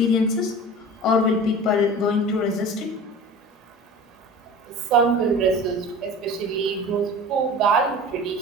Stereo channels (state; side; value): normal; both; correlation 0.38